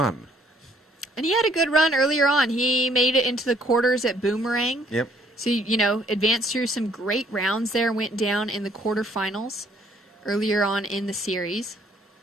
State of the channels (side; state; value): both; normal; correlation 0.63